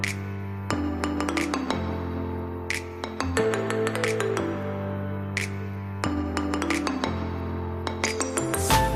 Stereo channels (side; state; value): both; identical; correlation 1.00